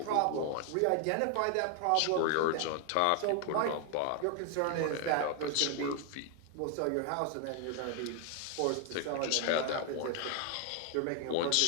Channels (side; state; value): both; different; correlation 0.00